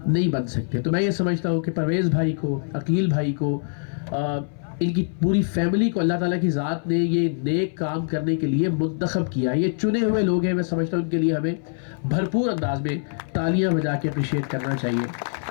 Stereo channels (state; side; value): silent; right; 60 dB below the other